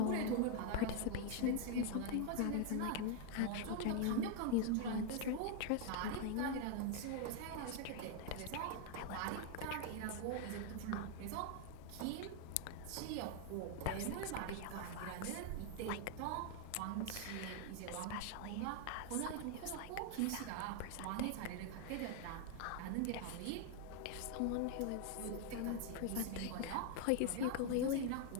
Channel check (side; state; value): both; different; correlation 0.00